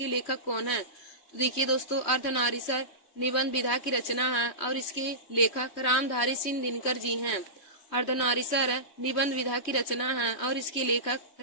लेखक कौन है। तो देखिए दोस्तों, अर्धनारीसर निबंध विधा की रचना है और इसके लेखक रामधारी सिंह दिनकर जी हैं। अर्धनारीसर निबंध विधा की रचना है और इसके लेखक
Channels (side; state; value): right; late; 3.1 ms